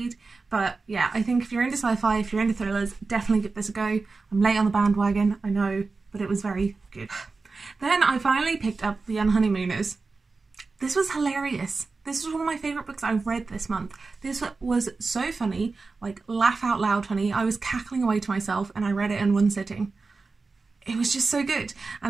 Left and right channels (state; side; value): quieter; left; 4.1 dB